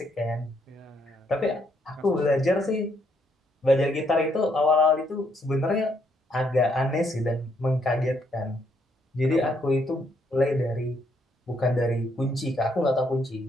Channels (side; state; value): both; normal; correlation 0.73